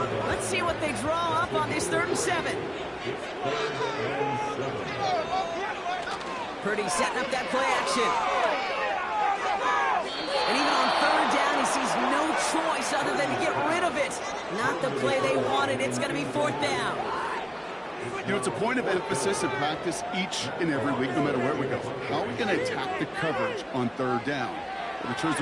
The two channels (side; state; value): both; identical; correlation 1.00